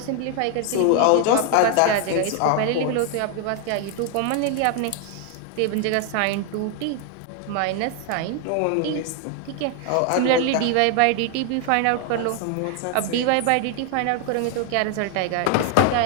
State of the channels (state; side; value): different; both; correlation 0.00